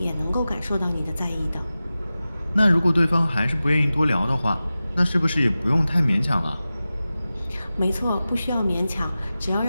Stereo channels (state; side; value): inverted; both; correlation -0.95